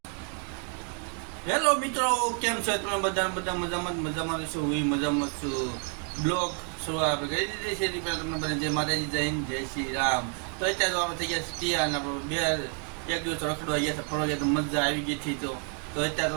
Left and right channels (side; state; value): left; quieter; 38.8 dB